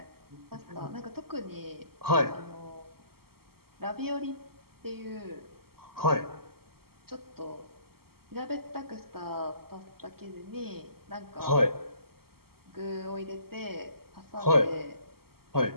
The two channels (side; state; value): left; late; 0.95 ms